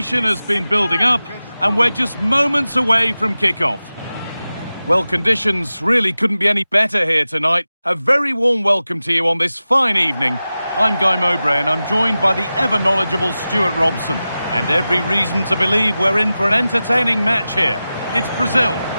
has been building up, and we're just moments away from kickoff. Well, conditions really couldn't be any better here tonight. A very warm welcome to you on this fine evening. I'm Guy Mowbray, and I'm joined by the ever-knowledgeable Stuart Robson. And every reason to believe we're in for an entertaining match here. It's Brazil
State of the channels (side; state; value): both; inverted; correlation -0.95